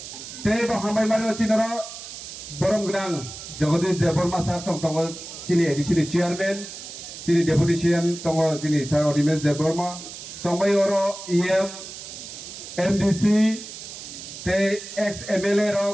তে ব হামবাই মারি চিনর বরম গ্রাং জগদীশ দেববর্মা স্যার চংতগ চিনি এডিসিনি চেয়ারম্যান চিনি ডেপুটি সিএম তং চিনি স্যার অনিমেশ দেববর্মা तंबाई ओरो ईएम एमडीसी ते एक्स एमएलए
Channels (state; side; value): noise; right; hiss, 12 dB below the sound